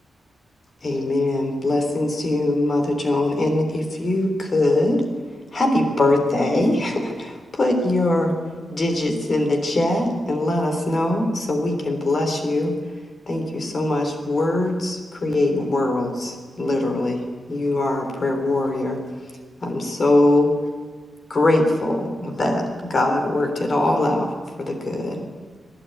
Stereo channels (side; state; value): both; normal; correlation 0.89